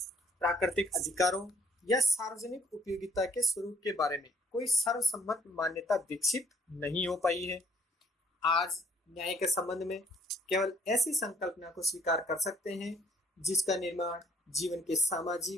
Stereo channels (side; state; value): both; normal; correlation 0.63